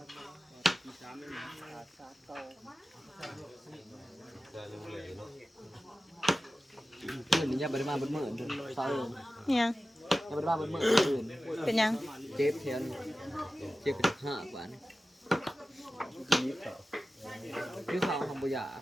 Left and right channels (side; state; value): both; normal; correlation 0.95